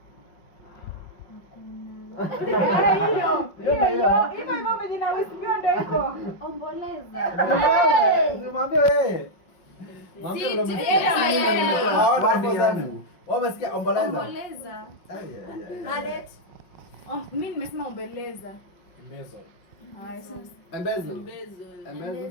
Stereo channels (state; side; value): late; right; 5.5 ms